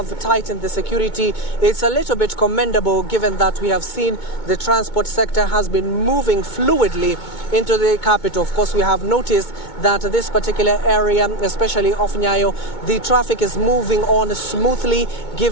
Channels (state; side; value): late; right; 2.2 ms